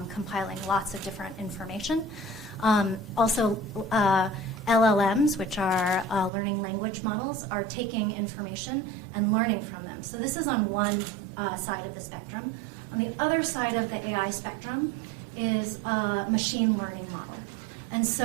compiling lots of different information. Also, LLMs, which are learning language models, are taking information and learning from them. So this is on one side of the spectrum. On the other side of the AI spectrum is a machine learning model. And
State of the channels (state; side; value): drops out; left; at 6.3 s